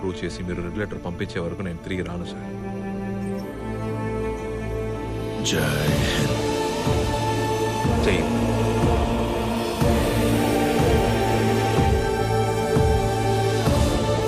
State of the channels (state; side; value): identical; both; correlation 1.00